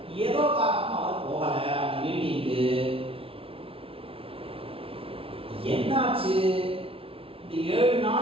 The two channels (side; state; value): left; late; 0.26 ms